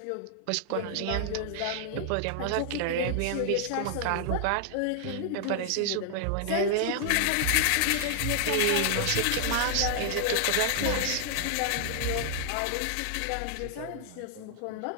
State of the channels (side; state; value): both; different; correlation 0.00